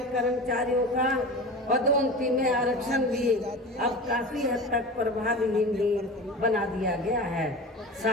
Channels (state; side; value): normal; both; correlation 0.32